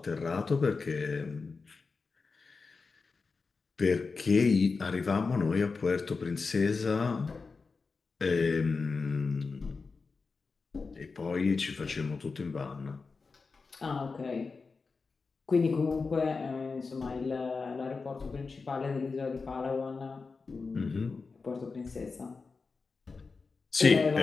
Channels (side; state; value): right; quieter; 4.5 dB